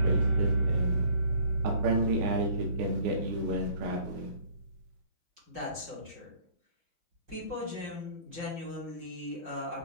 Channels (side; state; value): left; late; 5.6 ms